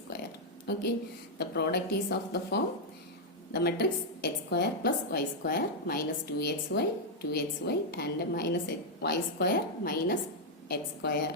Okay. The product is of the form, the matrix x square plus y square minus 2xy, 2xy and minus y square minus x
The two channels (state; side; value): normal; both; correlation -0.03